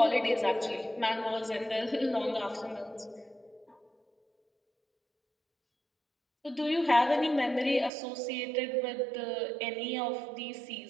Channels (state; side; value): drops out; left; at 7.9 s